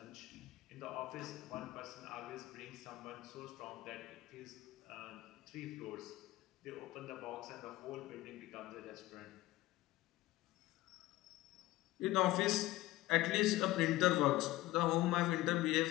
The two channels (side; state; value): right; quieter; 17.5 dB